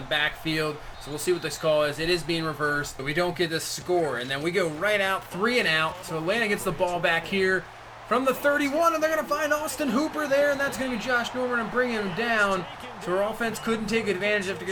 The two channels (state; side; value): identical; both; correlation 1.00